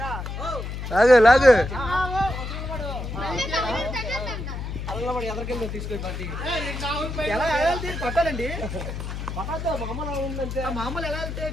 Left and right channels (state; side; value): noise; left; hum, 6 dB below the sound